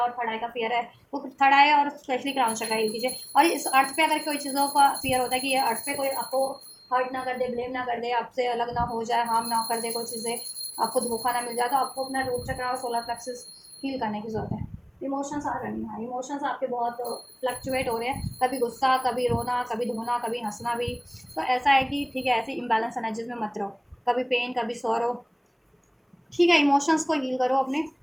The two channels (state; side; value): identical; both; correlation 1.00